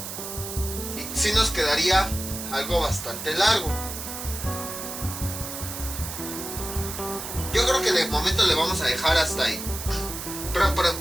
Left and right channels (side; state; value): right; noise; hiss, 7 dB below the sound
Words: y si nos quedaría algo bastante largo. Yo creo que de momento le vamos a dejar hasta ahí.